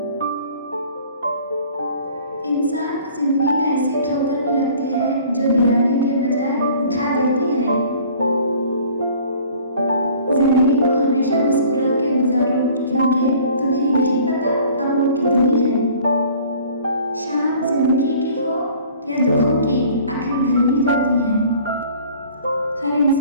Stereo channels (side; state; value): both; inverted; correlation -0.50